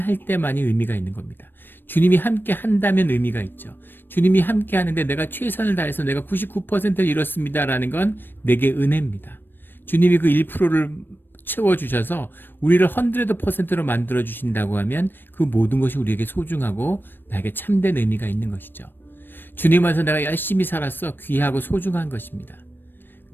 때만이 의미가 있는 겁니다. 주님이 함께 한다면 의미가 있죠. 주님이 함께 하는데 내가 최선을 다해서 내가 99%를 이뤘습니다라는 건 내게 은혜입니다. 주님이 그 1%를 채워주셔서 우리를 100%로 만들어주신다고 하면 그 모든 것이 우리에게 소중하고 나에게 참된 의미가 있는 것이죠. 주님 안에서 내가 열심히 살았어. 귀하고 소중한 것입니다.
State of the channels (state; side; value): late; right; 0.095 ms